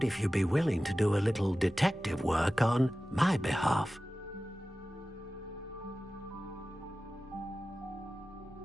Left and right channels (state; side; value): normal; both; correlation 0.95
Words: if you'd be willing to do a little detective work on my behalf.